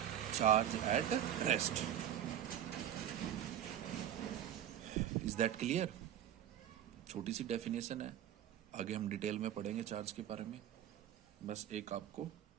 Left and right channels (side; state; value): left; quieter; 10.8 dB